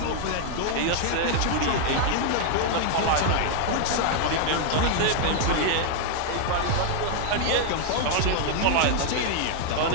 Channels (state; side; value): different; both; correlation 0.00